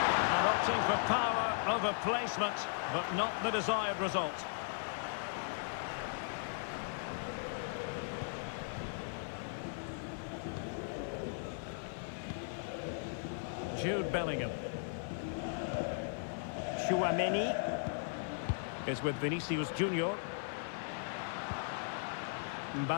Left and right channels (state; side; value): silent; right; 53 dB below the other